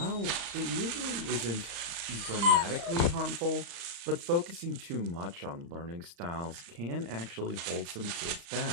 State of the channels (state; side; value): late; left; 35 ms